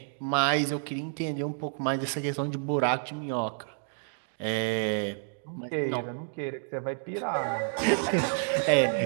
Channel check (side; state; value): left; silent; digital silence